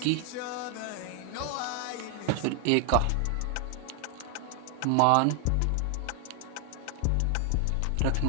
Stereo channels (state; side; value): different; both; correlation 0.00